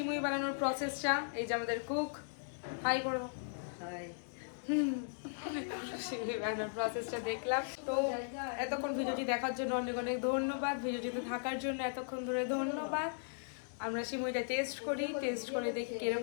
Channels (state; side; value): silent; right; digital silence